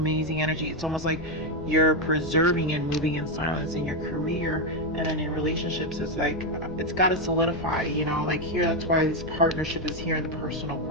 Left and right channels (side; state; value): left; noise; rumble, 15 dB below the sound